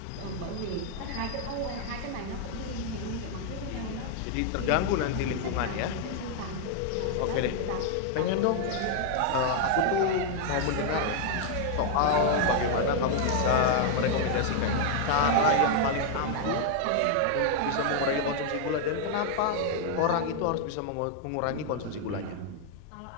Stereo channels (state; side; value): different; both; correlation 0.00